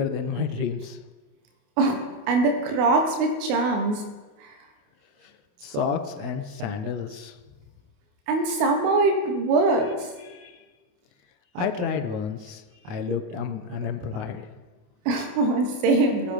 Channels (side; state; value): left; late; 28 ms